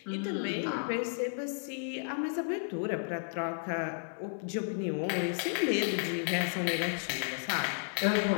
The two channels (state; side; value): silent; right; digital silence